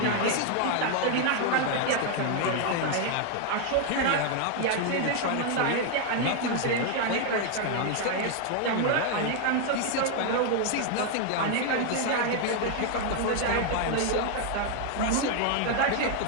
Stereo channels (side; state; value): both; different; correlation 0.00